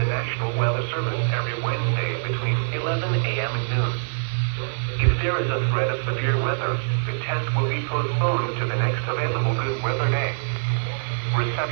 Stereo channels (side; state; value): left; silent; 58 dB below the other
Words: National Weather Service every Wednesday between 11 a.m. and noon. If there is a threat of severe weather, the test will be postponed to the next available good weather day.